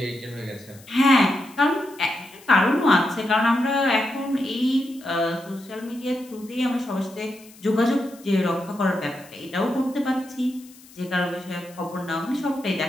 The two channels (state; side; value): noise; left; hiss, 23 dB below the sound